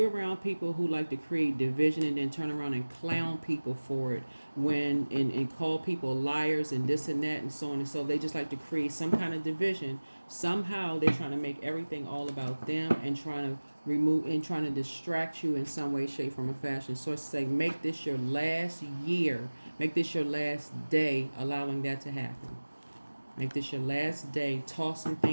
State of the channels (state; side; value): inverted; both; correlation -1.00